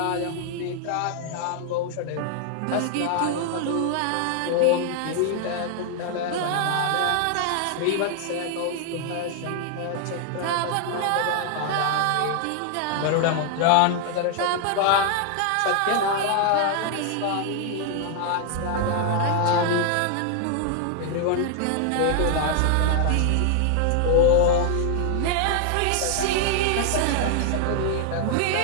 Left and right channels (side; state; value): both; different; correlation 0.00